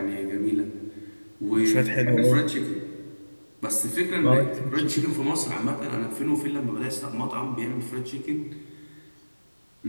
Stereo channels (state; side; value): inverted; both; correlation -1.00